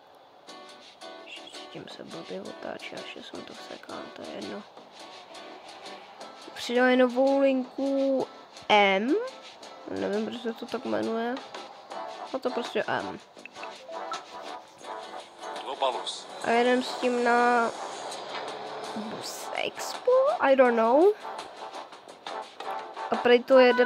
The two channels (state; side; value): identical; both; correlation 1.00